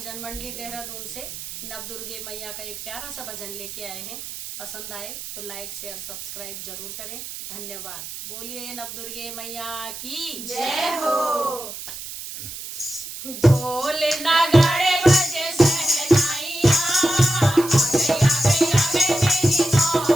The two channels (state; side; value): noise; right; hiss, 10 dB below the sound